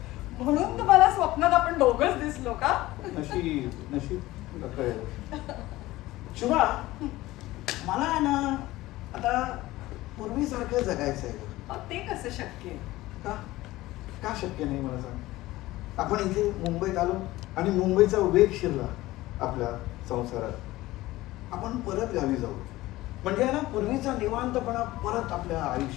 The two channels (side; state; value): right; quieter; 17.7 dB